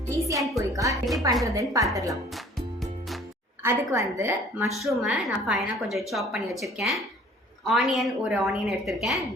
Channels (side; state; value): both; normal; correlation 0.52